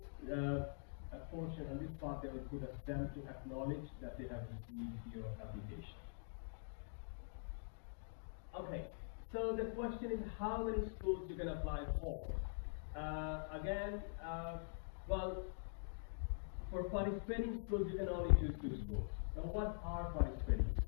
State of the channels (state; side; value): silent; right; digital silence